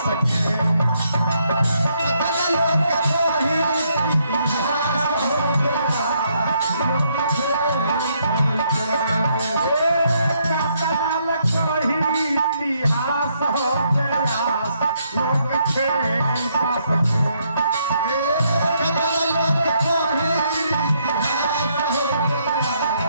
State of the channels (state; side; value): inverted; both; correlation -0.73